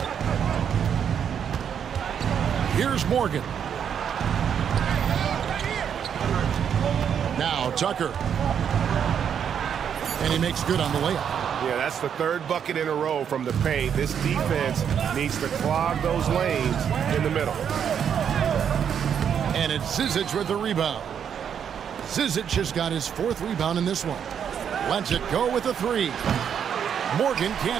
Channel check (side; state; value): left; quieter; 8.1 dB